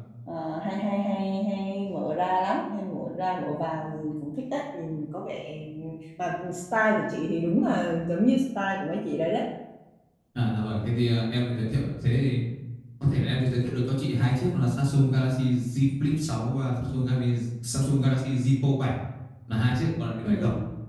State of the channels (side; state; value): both; identical; correlation 1.00